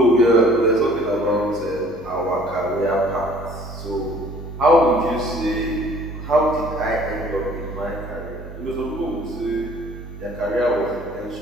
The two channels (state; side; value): normal; both; correlation 0.54